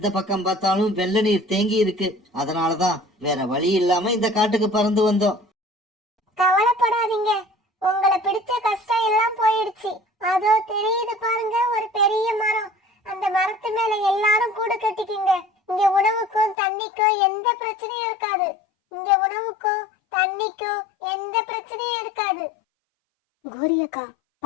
பக்கம் பார்த்தாலும் வெள்ள நீர் தேங்கி இருக்கு. அதனாலதான் வேற வழி இல்லாம இந்த காட்டுக்கு பறந்து வந்தோம். கவலைப்படாதீங்க, உங்களை பிடிச்ச கஷ்டம் எல்லாம் போயிடுச்சு. அதோ தெரியுது பாருங்க ஒரு பெரிய மரம். அந்த மரத்து மேல எல்லாரும் கூடு கட்டிக்கிங்க. இங்க உணவுக்கும் தண்ணிக்கும் எந்த பிரச்சனையும் இருக்காது. இங்க உணவுக்கும் தண்ணிக்கும் எந்த பிரச்சனையும் இருக்காது. கோரியக்கா,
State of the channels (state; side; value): drops out; right; at 16.6 s